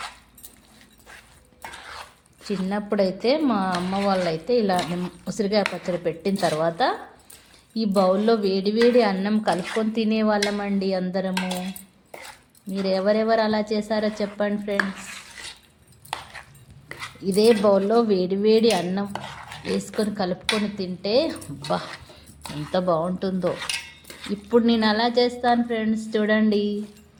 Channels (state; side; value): identical; both; correlation 1.00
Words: చిన్నప్పుడైతే మా అమ్మ వాళ్ళైతే ఇలా ఉసిరికాయ పచ్చడి పెట్టిన తర్వాత ఈ బౌల్లో వేడి అన్నం కలుపుకొని తినేవాళ్ళమండి అందరము. మీరు ఎవరెవరు అలా చేశారో చెప్పండి ఫ్రెండ్స్. ఇదే బౌల్లో వేడి అన్నం వేసుకొని కలుపుకొని తింటే బా ఎంత బాగుంటుందో. ఇప్పుడు నేను అలా చేస్తాను ఫ్రెండ్స్. చూడండి,